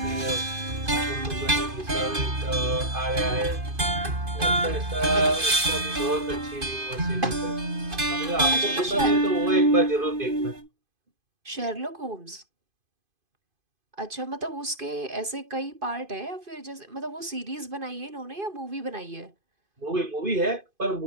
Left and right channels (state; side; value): late; left; 2.5 ms